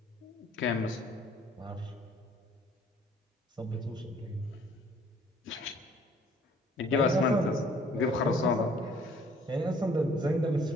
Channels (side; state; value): both; normal; correlation 0.58